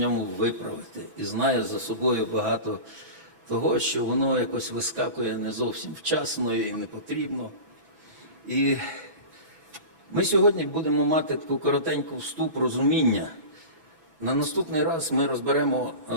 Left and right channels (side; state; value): left; late; 6.1 ms